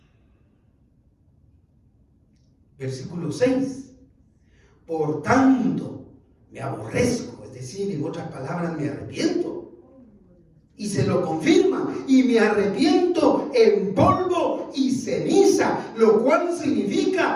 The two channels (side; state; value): both; identical; correlation 1.00